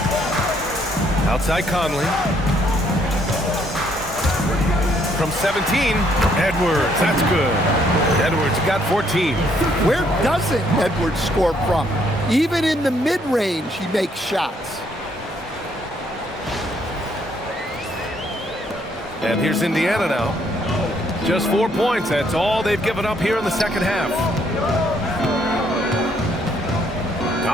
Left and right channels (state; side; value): normal; both; correlation 0.68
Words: Outside Conley. From 17, Edwards. That's good. Edwards got 14. Where doesn't Edwards score from? Even in the mid-range, he makes shots. And here's Indiana now. Just 4 points. That's all they've given up here in the second half.